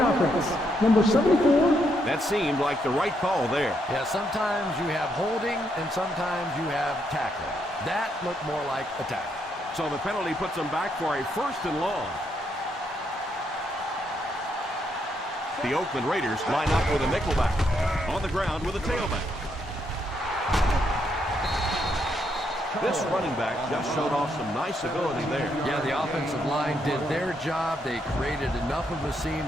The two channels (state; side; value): normal; both; correlation 0.77